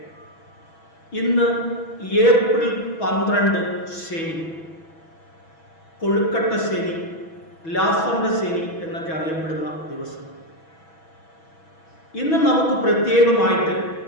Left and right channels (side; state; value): right; late; 6.2 ms